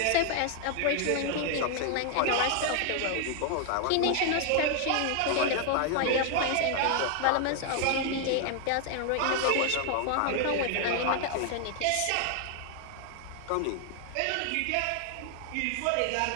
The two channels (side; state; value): both; different; correlation 0.00